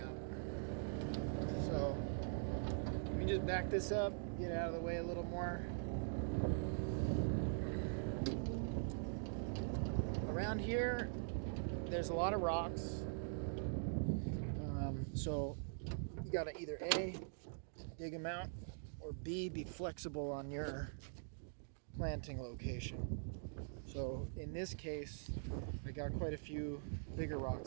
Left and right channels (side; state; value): left; silent; digital silence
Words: So, let me just back this up, get out of the way a little more. Around here, there's a lot of rocks. So, you gotta either A, dig them out, or B, be flexible on your planting location. So in this case, I got quite a few bigger